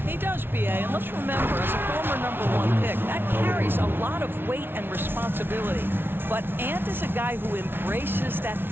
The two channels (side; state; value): left; late; 0.11 ms